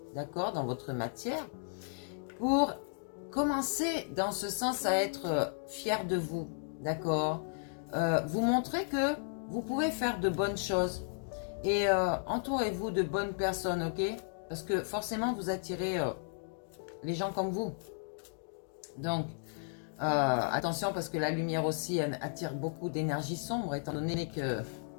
d'accord, dans votre matière, pour commencer dans ce sens à être fier de vous, d'accord. Vous montrez que vous pouvez faire de bonnes choses et entourez-vous de bonnes personnes, ok? Parce que forcément vous attirez les gens comme vous. Donc attention parce que la lumière aussi attire beaucoup d'énergie sombre étant donné que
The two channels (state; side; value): silent; right; digital silence